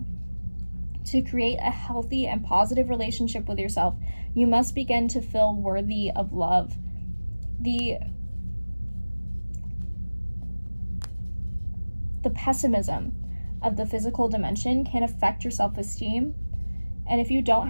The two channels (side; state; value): both; inverted; correlation -1.00